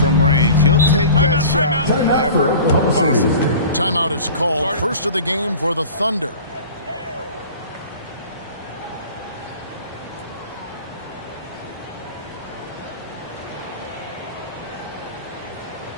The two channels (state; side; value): inverted; both; correlation -0.40